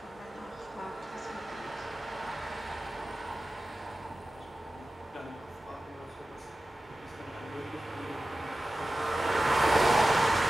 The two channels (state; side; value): normal; both; correlation 0.95